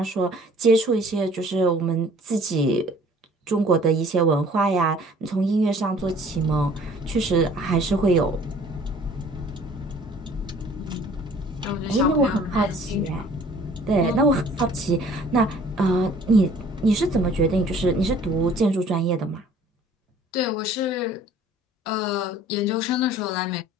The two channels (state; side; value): normal; both; correlation 0.53